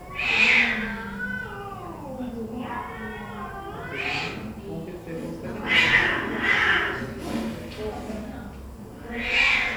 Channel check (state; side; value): identical; both; correlation 1.00